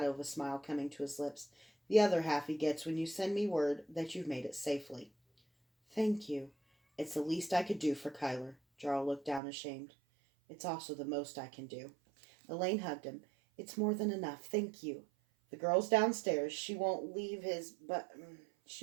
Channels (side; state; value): left; drops out; at 9.4 s